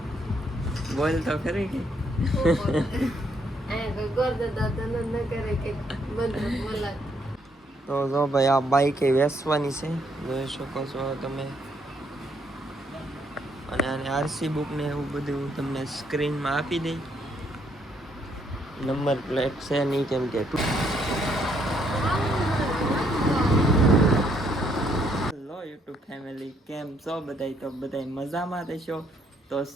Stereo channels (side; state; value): both; normal; correlation 0.71